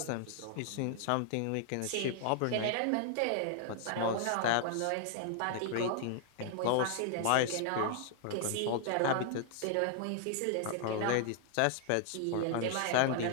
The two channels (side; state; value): both; different; correlation 0.00